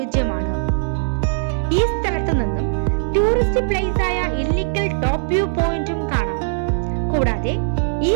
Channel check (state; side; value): silent; left; digital silence